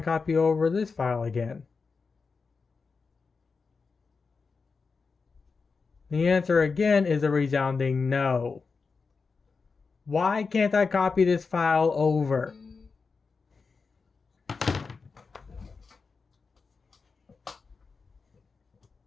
copy over this file again. The answer again is a resounding no. Why can't I copy this file over?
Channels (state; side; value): quieter; right; 4.7 dB